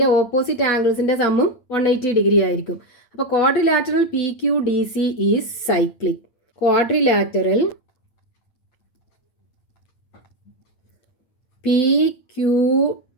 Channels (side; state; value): right; late; 8.8 ms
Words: ഓപ്പോസിറ്റ് ആംഗിൾസിൻ്റെ സമ്മും 180 ഡിഗ്രി ആയിരിക്കും. അപ്പോൾ quadrilateral P Q D C is cyclic. Quadrilateral P Q